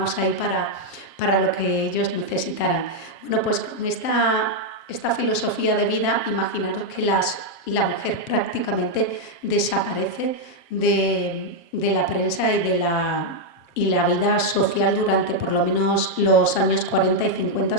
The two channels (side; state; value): right; late; 7.4 ms